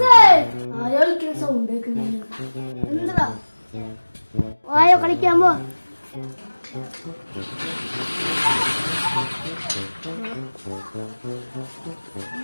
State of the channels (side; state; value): both; inverted; correlation -1.00